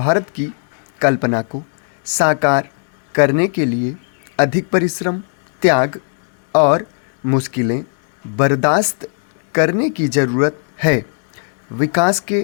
की कल्पना को साकार करने के लिए अधिक परिश्रम, त्याग और मुश्किलें बर्दाश्त करने की ज़रूरत है। विकास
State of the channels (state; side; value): silent; right; digital silence